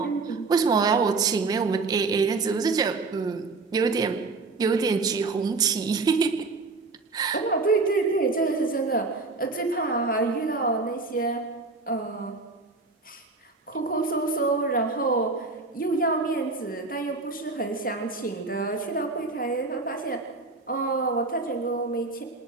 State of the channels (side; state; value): left; quieter; 3.8 dB